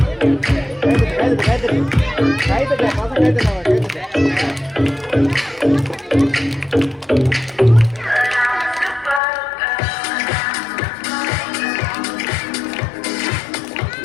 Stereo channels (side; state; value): right; drops out; at 9.2 s